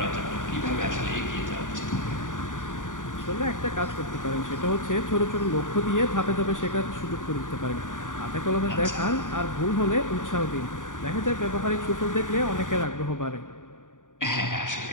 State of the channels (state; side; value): late; right; 0.87 ms